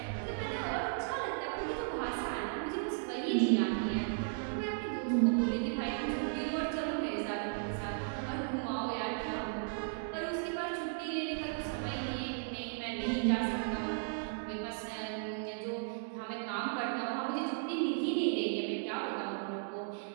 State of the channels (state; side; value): silent; left; digital silence